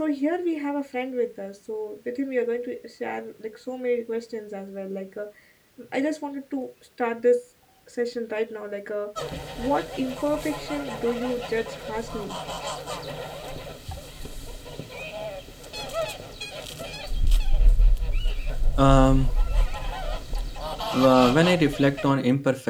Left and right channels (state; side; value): identical; both; correlation 1.00